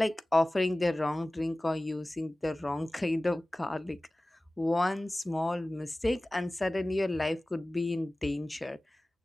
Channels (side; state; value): both; normal; correlation 0.98